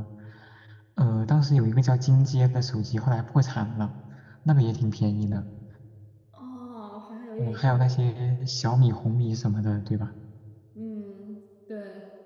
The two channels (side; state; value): both; identical; correlation 1.00